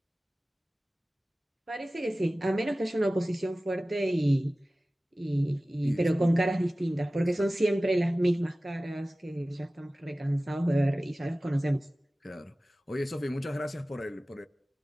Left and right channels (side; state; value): both; normal; correlation 0.97